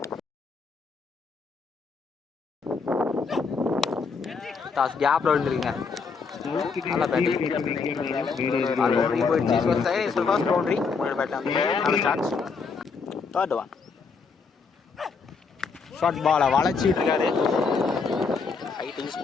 டாஸ் கேப்பில் விழுந்துருக்கீங்க நல்லா பேட்டிங் போயிடுச்சு ஃபர்ஸ்ட் பவுண்டரி முன்னாடி பேட்டில் நல்ல சான்ஸ் தேர்ட் ஒன் ஷார்ட் பாலை வளைச்சிட்டு இருக்காரு ஹைட் யூஸ்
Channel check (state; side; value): quieter; right; 5.0 dB